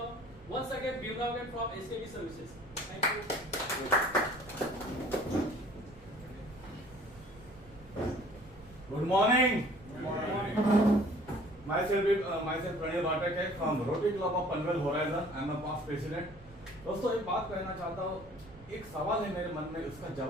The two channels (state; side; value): noise; right; rumble, 20 dB below the sound